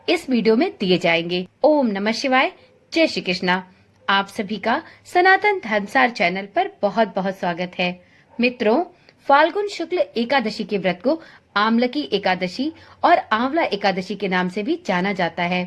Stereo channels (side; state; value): both; identical; correlation 1.00